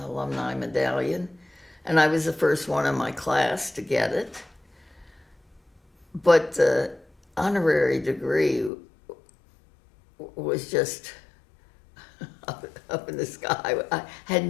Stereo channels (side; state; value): right; drops out; at 8.7 s